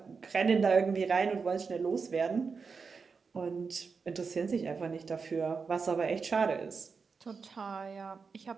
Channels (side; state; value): left; quieter; 5.1 dB